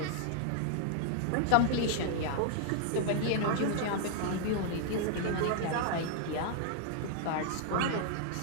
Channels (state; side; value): different; both; correlation 0.00